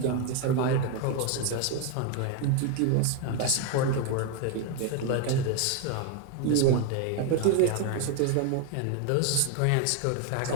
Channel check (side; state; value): both; different; correlation 0.01